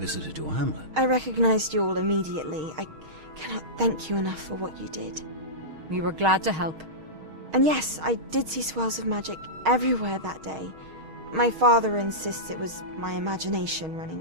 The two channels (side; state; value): left; late; 6.4 ms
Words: your hamlet. I recognized you all immediately. I cannot thank you enough for what you did. We were glad to help. And yes, I did see swirls of magic everywhere that day. My father insists it was my imagination